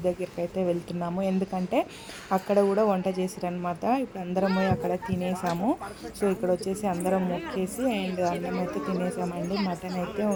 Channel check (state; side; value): identical; both; correlation 1.00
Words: దగ్గరికి అయితే వెళ్తున్నాము. ఎందుకంటే అక్కడ కూడా వంట చేసారనమాట. ఇప్పుడు అందరం పోయి అక్కడ తినేసాము. సో ఇక్కడ వచ్చేసి అందరం మొక్కేసి అండ్ అన్నం అయితే తినేసామండి. మటన్ అయితే